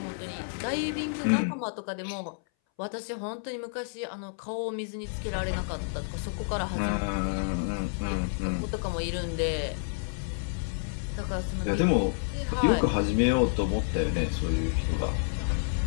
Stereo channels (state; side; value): silent; right; 58 dB below the other